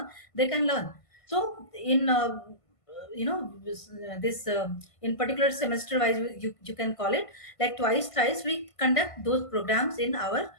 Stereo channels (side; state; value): right; late; 1.5 ms